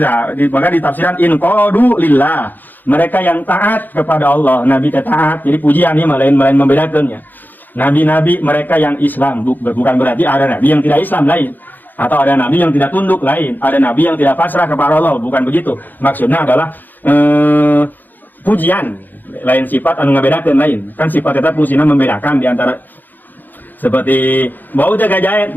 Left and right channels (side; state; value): right; late; 0.087 ms